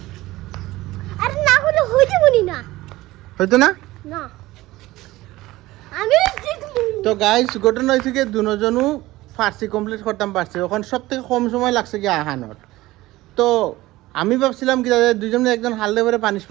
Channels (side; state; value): left; quieter; 18.0 dB